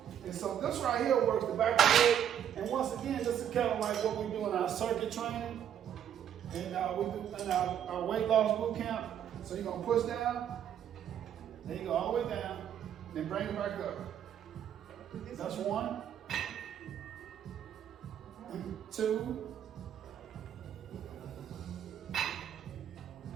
And so this right here works the back of the leg. And once again, this is kind of like what we do in our circuit training. And we do in our weight loss boot camp. So you're gonna push down, then you go all the way down, then bring it back up. That's 1, 2,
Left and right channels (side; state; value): left; quieter; 9.6 dB